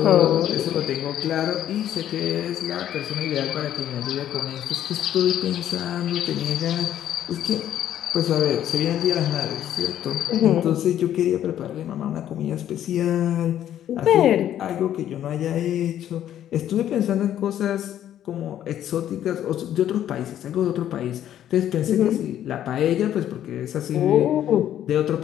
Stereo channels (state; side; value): quieter; right; 11.1 dB